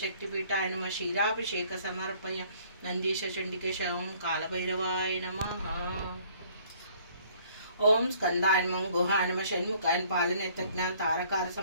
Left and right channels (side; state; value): both; inverted; correlation -0.58